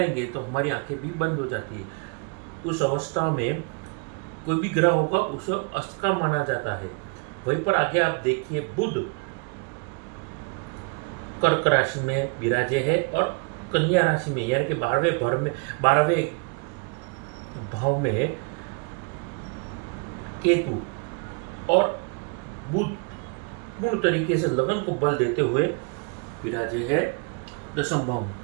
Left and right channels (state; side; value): quieter; left; 34.3 dB